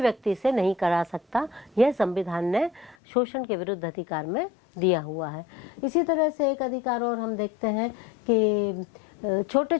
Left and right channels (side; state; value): right; drops out; at 3.0 s